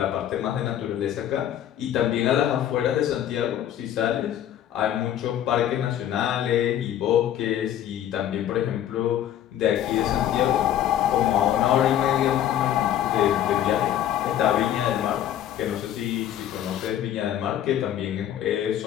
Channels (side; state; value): right; quieter; 11.1 dB